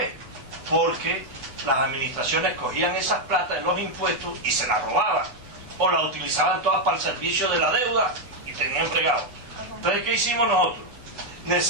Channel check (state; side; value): late; left; 8.0 ms